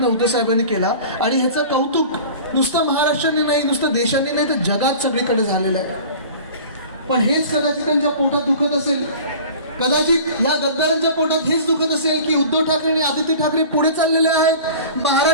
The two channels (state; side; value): inverted; both; correlation -0.41